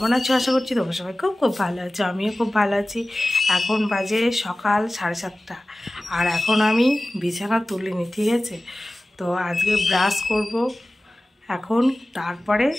আছো? আশা করছি তোমরা সবাই খুব খুব ভালো আছো। আমিও খুব ভালো আছি। এখন বাজে সকাল 7:30 আর এখন আমি বিছানা তুলিনি, ঠিক আছে? তো আজকে ব্রাশ করব এখন, তারপরে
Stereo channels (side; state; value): both; normal; correlation 0.97